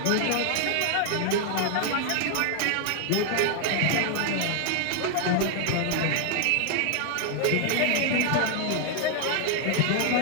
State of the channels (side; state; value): both; different; correlation 0.00